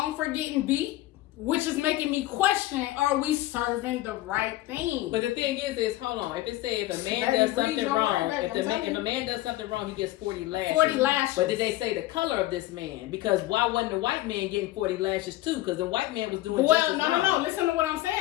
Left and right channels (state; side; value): quieter; right; 16.6 dB